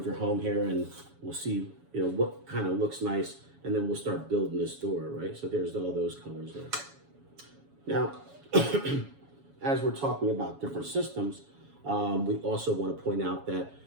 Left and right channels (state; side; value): late; left; 7.1 ms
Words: your home here, and we'll see, you know, what kind of looks nice, and then we'll start building this door, right? So there's all those colors there. Now, as we're talking about different systems, we also want to point out that